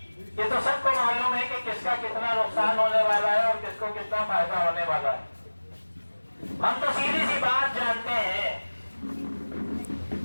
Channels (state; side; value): inverted; both; correlation -1.00